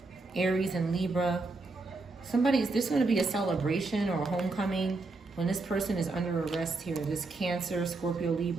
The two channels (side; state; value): left; quieter; 3.5 dB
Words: Aries, and Libra. There's going to be a celebration or a homecoming when this person is under arrest here. This Cancer, Scorpio,